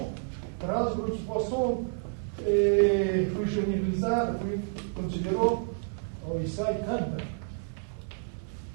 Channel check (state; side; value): quieter; left; 38.2 dB